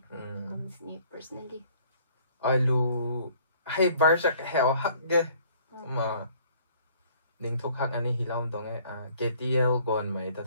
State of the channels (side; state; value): both; inverted; correlation -0.58